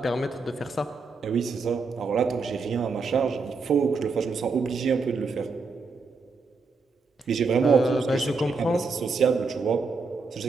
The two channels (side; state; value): left; quieter; 4.3 dB